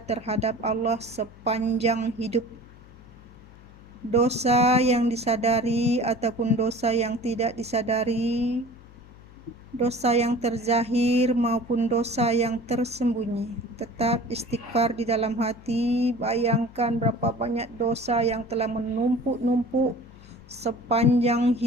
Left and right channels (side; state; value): left; noise; hum, 21 dB below the sound